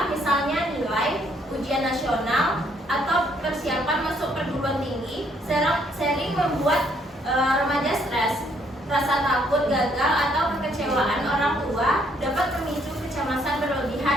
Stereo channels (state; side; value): normal; both; correlation 0.68